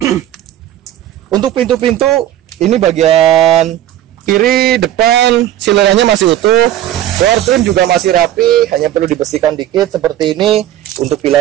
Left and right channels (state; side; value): quieter; left; 12.6 dB